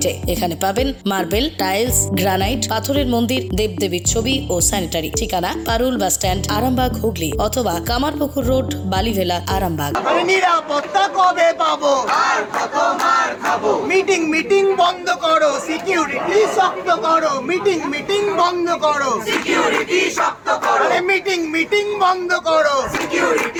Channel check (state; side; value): identical; both; correlation 1.00